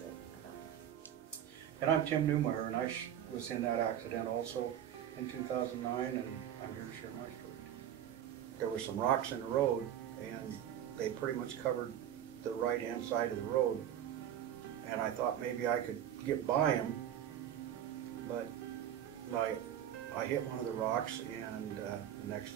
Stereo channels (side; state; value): left; quieter; 10.5 dB